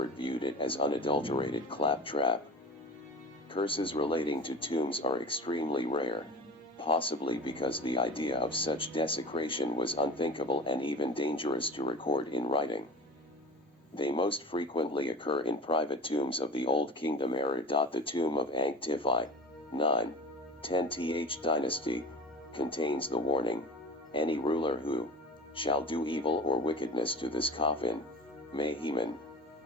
viewed it as unadulterated claptrap. Curses relating to tombs are extremely rare, possibly because the idea of such desecration was unthinkable and even dangerous to record in writing. They most frequently occur in private tombs of the Old Kingdom era. The tomb of Ankh-Tifi, 9-10th dynasty, contains the warning, "Any ruler who shall do evil or wickedness to this coffin, may Heman,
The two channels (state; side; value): normal; both; correlation 0.36